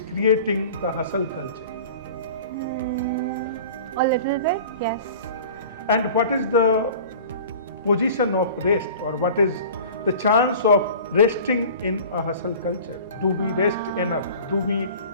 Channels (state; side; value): inverted; both; correlation -0.41